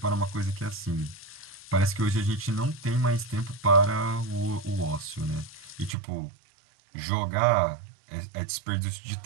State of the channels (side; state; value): left; drops out; at 6.0 s